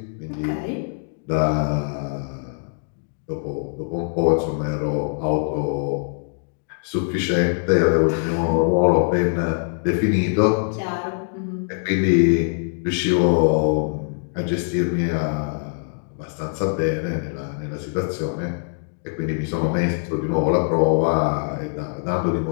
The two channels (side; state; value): right; silent; digital silence